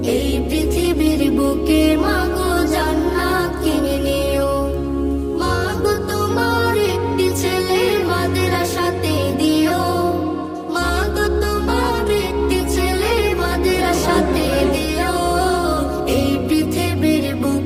এই পৃথিবীর বুকে মাগো জান্নাত কিনে নিও। মাগো তোমার একটি ছেলে মাদ্রাসাতে দিও, মাগো তোমার একটি ছেলে মাদ্রাসাতে দিও। এই পৃথিবীর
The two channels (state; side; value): identical; both; correlation 1.00